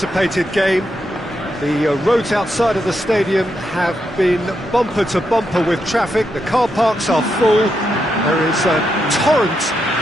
game. The roads outside of the stadium have been bumper to bumper with traffic. The car parks are full. There is a torrent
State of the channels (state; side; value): normal; both; correlation 0.83